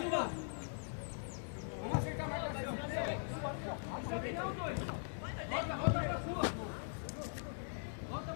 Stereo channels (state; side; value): silent; right; digital silence